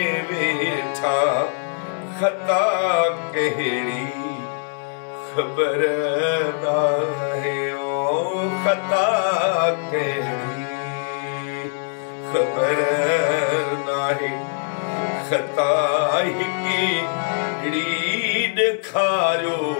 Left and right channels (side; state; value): right; silent; 64 dB below the other